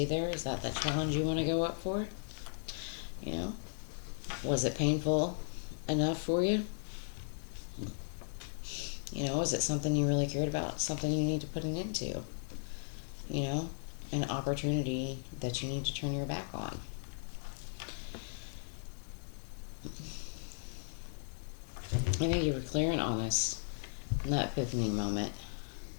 there. Is that the challenge you want to go up for? You know, was it painful enough for you? You know, is it something you really cared about? Something you need to put an end to? You know, an opportunity that you need to turn your back on. I think you were clear and honest in that epiphany moment.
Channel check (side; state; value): right; silent; digital silence